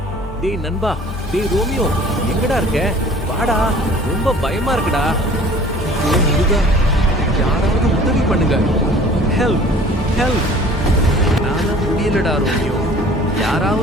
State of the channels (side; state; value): both; normal; correlation 0.49